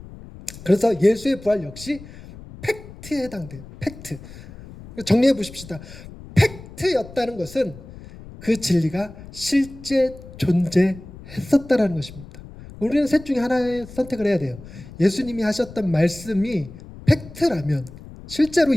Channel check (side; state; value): left; noise; rumble, 17 dB below the sound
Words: 그래서 예수의 부활 역시 팩트에 해당돼요. 팩트. 정리해 보십시다. 팩트였다는 것은 그 진리가 실제 존재했었다라는 것입니다. 우리는 셋 중에 하나의 선택을 해야 돼요. 예수님이 하셨던 말씀이 팩트라면, 실제로